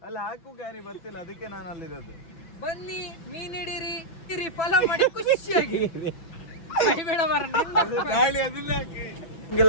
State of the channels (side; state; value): right; late; 6.1 ms